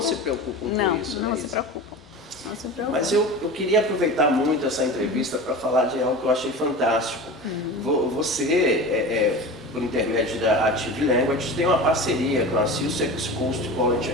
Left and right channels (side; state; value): both; normal; correlation 0.32